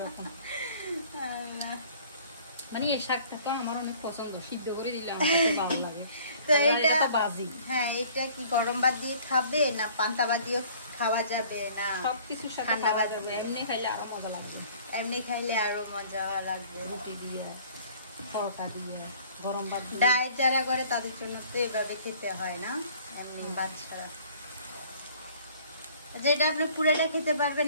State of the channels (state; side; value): inverted; both; correlation -0.53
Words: মানে এই শাকটা তো আমার অনেক পছন্দ, সিদ্ধ করে দিলে আমার ভালো লাগে। তো এটা বাজি, হ্যাঁ, এটা কি গরম ভাত দিয়ে খাবে না পান্তা ভাত দিয়ে খাওয়া যাবে? না সবকিছুর সাথে খাওয়া যাবে, এমনি খাইলে আরো মজা লাগবে, এমনি খাইলে আরো মজা লাগবে। রুটি দিয়ে, পরোটা দিয়ে, গরম ভাত দিয়ে। ডায়েট যারা করে তাদের জন্য তো এভাবে খেতে হয় না, এমনি ভাত ছাড়া। যেটা আপনি পুরোটা খেতে পারবেন